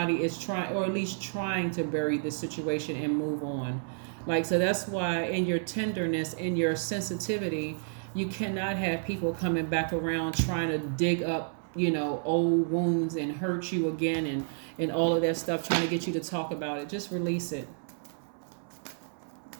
is trying, or at least trying to bury the situation and move on. Like, so that's why in your tenderness, in your sensitivity, you cannot have people coming back around trying to dig up, you know, old wounds and hurt you again and all of that stuff, trying to get you to talk about it. Just release it.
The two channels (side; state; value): left; silent; 57 dB below the other